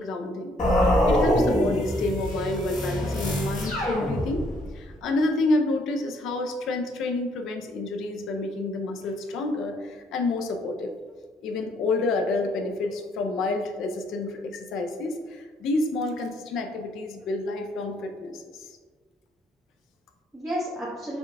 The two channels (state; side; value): normal; both; correlation 0.67